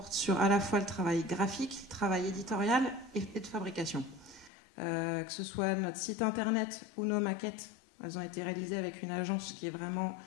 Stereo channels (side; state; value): right; drops out; at 4.5 s